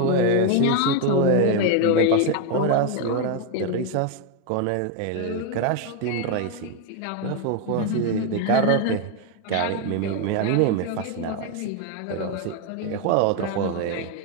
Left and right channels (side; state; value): both; different; correlation 0.01